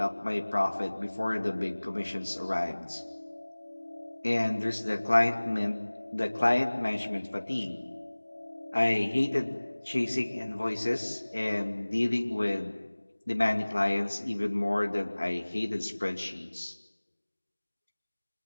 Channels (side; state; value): both; inverted; correlation -1.00